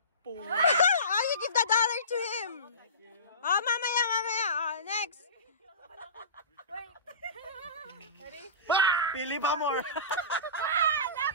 Oh, you give the dollar to him. Oh, mamaya. Oh, next. Pili pa more.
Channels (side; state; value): both; inverted; correlation -0.33